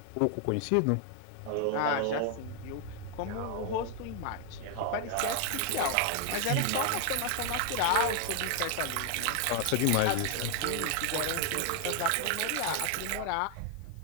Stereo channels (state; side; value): different; both; correlation 0.00